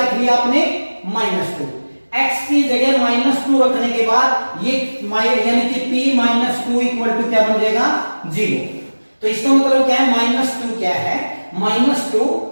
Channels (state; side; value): inverted; both; correlation -1.00